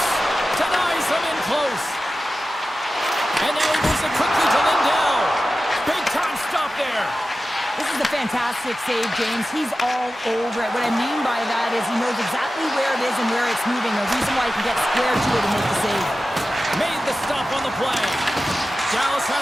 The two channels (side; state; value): both; normal; correlation 0.94